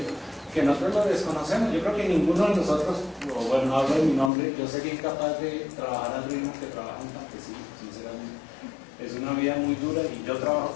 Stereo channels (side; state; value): right; drops out; at 4.3 s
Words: que nosotros lo desconocemos. Yo creo que ninguno de nosotros, o bueno, hablo de mi nombre, yo sería incapaz de trabajar al ritmo que trabaja un campesino, sinceramente. Es una vida muy dura y yo trabajo